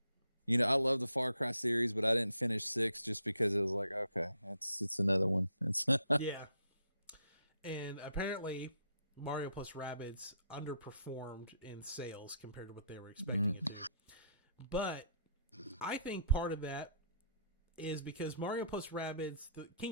You know, I love the Far Cry series, but I didn't finish 6 just because it was like, okay, it's another one. It's yeah. And apparently Mario plus Rabbids underperformed in sales compared to what they were expecting it to. But I think part of that is because Mario plus Rabbids, the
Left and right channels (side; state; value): both; inverted; correlation -0.69